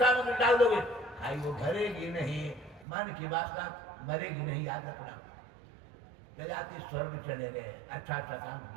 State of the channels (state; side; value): drops out; left; at 2.9 s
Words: डाल दोगे, खाई वो भरेगी नहीं, मन की वासना मरेगी नहीं, याद रखना। जजाति स्वर्ग चले गए, अच्छा अच्छा काम